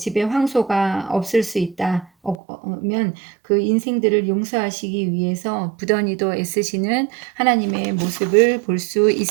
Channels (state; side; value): drops out; left; at 2.4 s